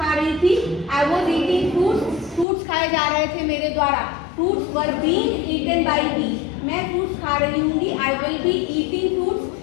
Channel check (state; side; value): drops out; right; at 2.5 s